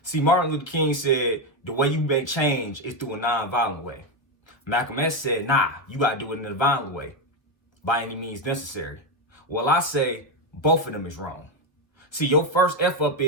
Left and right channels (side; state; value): right; late; 1.1 ms